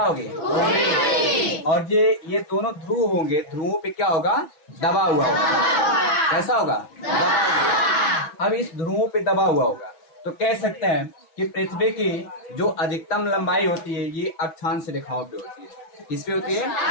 उभरे। और ये दोनों ध्रुव होंगे, ध्रुवों पे क्या होगा? दबा हुआ होगा। कैसा होगा? दबा हुआ। अब इस ध्रुवों पे दबा हुआ होगा, तो कह सकते हैं कि पृथ्वी की जो अधिकतम लंबाई होती है, ये अक्षांश रेखाओं पे होती है। किस पे होती है?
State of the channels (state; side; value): late; right; 6.1 ms